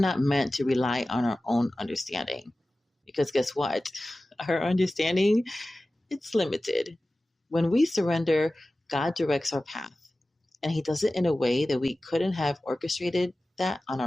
meant to rely on our own understanding because guess what? Our understanding, it's limited. When we surrender, God directs our path, and He does it in a way that we couldn't have orchestrated that on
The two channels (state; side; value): normal; both; correlation 0.96